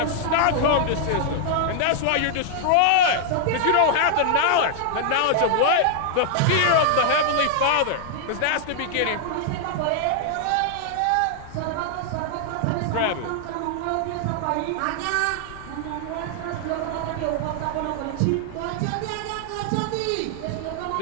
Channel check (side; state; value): both; different; correlation -0.01